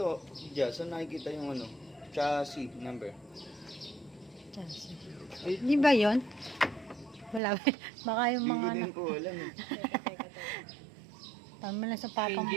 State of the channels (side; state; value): left; drops out; at 7.4 s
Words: Jia, saan nakikita yung ano? Chassis number. Di ba yun? Wala ba? Baka yung Hindi mga din ko alam eh. tama lang sa papa mo.